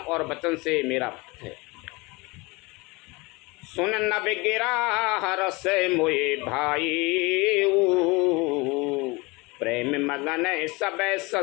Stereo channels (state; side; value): quieter; right; 25.1 dB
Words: वचन से मेरा भक्त है। सुन न बिगिरा हरस मोए भाई, प्रेम मगन सब